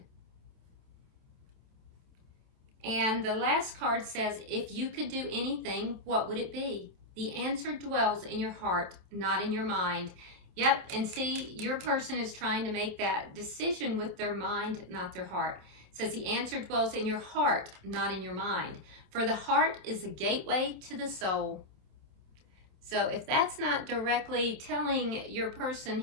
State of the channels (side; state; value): left; late; 27 ms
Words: And the last card says, if you could do anything, what would it be? The answer dwells in your heart, not in your mind. Yep, and see, your person is trying to make that decision with their mind, not their heart. It says the answer dwells in your heart, not in your mind. For the heart is the gateway to the soul. So if that's not directly telling your person